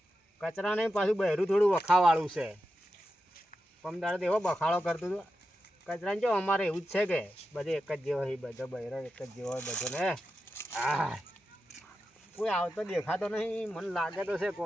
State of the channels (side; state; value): both; normal; correlation 0.90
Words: કચરા નહીં પાછું બહેરું થોડું વખાવાળું છે પમદાડે તો એવો બખાડો કરતું હતું કચરાને જો અમારે એવું જ છે કે બધે એક જ જેવો હોય બધો બહેરો એક જ જેવો હોય બધો ને હા કોઈ આવતો દેખાતો નહીં મને લાગે તો છે